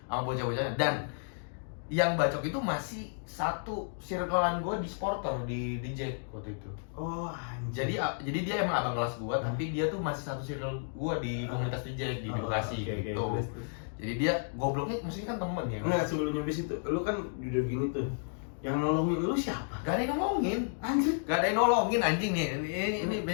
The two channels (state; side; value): silent; right; digital silence